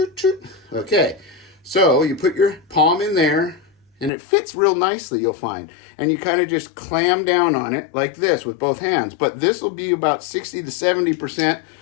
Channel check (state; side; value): drops out; right; at 4.1 s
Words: Okay, so you put your palm in there, and it fits real nicely, you'll find. And you kind of just clam down on it like this with both hands. But this will be about 60 to 70%.